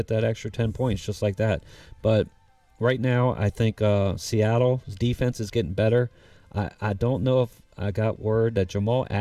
that extra 10 points, just like that. But right now, I think Seattle's defense is getting better. I don't know if I got word that Jamal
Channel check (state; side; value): identical; both; correlation 1.00